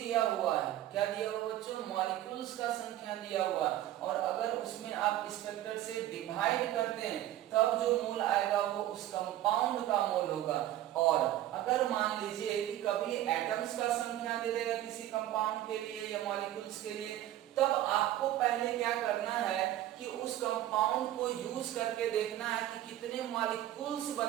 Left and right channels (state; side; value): quieter; left; 13.5 dB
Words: हुआ है, क्या दिया हुआ बच्चों, मॉलिक्यूल्स का संख्या दिया हुआ, और अगर उसमें आप इस फैक्टर से डिवाइड करते हैं तब जो मोल आएगा वो उस कंपाउंड का मोल होगा। और अगर मान लीजिए कि कभी एटम्स का संख्या दे देगा किसी कंपाउंड के लिए या मॉलिक्यूल्स के लिए, तब आपको पहले क्या करना है कि उस कंपाउंड को यूज करके देखना है कि कितने मॉलिक्यूल्स